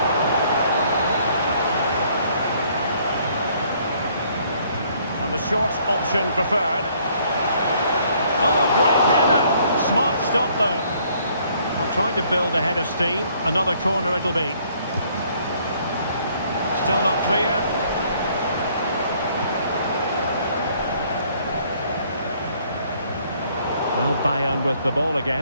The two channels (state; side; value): inverted; both; correlation -0.63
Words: And the short option preferred. Oh, great header. Smart stop, though. I'm trying to build a head of steam. Another corner it'll be. Still not clear. Well, Bayern with the ball